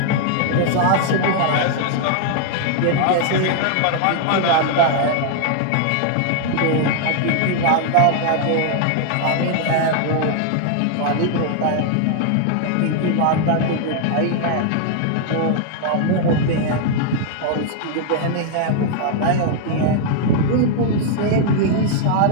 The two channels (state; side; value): different; both; correlation 0.00